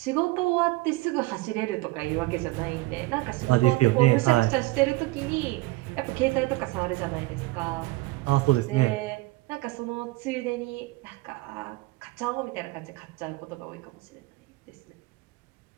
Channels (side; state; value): left; quieter; 20.4 dB